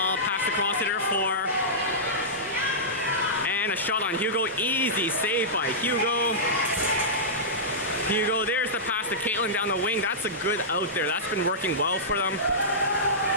passed across to their 4. And a shot on Hugo, easy save by Hugo. Hugo, there's the pass to Caitlin down the wing. That's a good out there, that's been working well for them.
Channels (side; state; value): both; normal; correlation -0.14